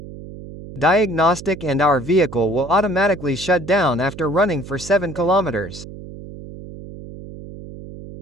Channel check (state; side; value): noise; right; hum, 14 dB below the sound